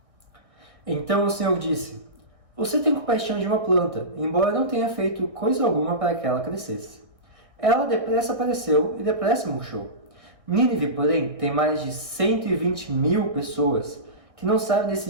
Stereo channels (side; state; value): left; late; 1.6 ms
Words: Então o Senhor disse: você tem compaixão de uma planta, embora não tenha feito coisa alguma para que ela crescesse. Ela depressa apareceu e depressa murchou. Nínive, porém, tem mais de 120.000 pessoas que não sabem